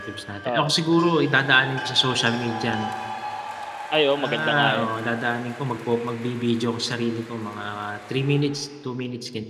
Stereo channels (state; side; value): identical; both; correlation 1.00